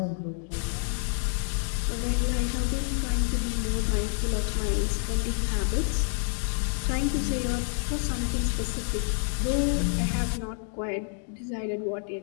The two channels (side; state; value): right; silent; 57 dB below the other